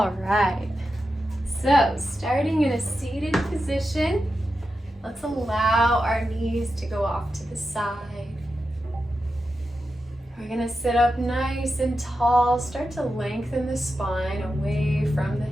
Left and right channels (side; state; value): both; normal; correlation 0.90